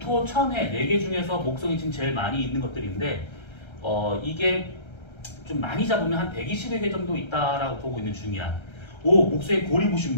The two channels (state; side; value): late; right; 1.3 ms